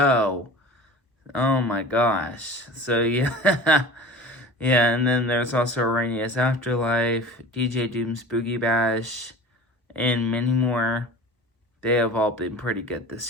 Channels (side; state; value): both; normal; correlation 0.38